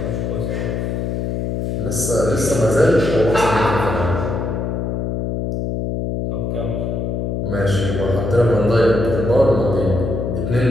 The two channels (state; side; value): noise; left; hum, 2 dB below the sound